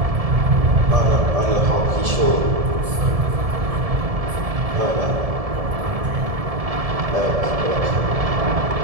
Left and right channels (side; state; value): left; late; 1.7 ms